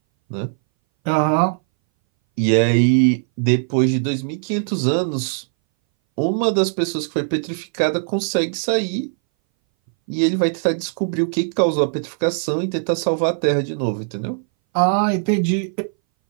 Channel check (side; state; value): left; silent; 61 dB below the other